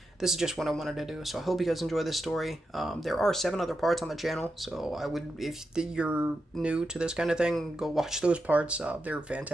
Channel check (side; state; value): both; normal; correlation 0.88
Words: this is just what I wanted to do. So I hope you guys enjoy this story. There are 7 other parts on the channel, so I would, if you're new to this kind of thing, go watch those parts. They're